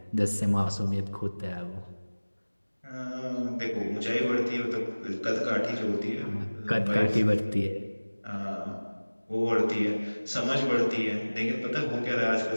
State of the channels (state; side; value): inverted; both; correlation -1.00